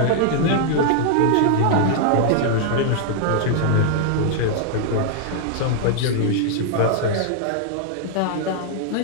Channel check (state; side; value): different; both; correlation 0.00